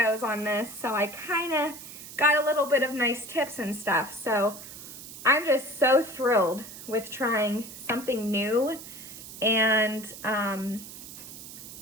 on this, so I kind of got a little bit of nice tips and stuff. So I'm just so thrilled with trying something new and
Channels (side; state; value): right; noise; hiss, 13 dB below the sound